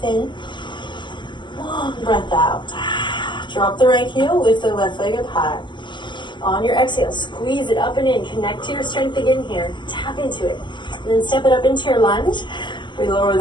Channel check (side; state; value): right; late; 0.22 ms